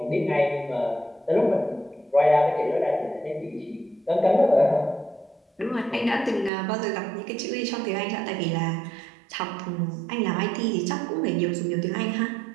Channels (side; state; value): left; drops out; at 6.5 s